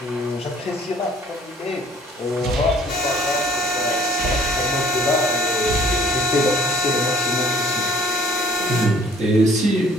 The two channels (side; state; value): both; normal; correlation 0.55